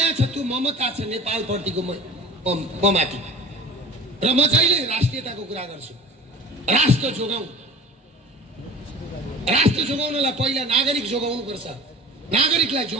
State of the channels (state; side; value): normal; both; correlation 0.40